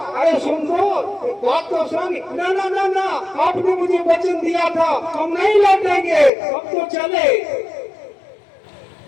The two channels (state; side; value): drops out; right; at 6.3 s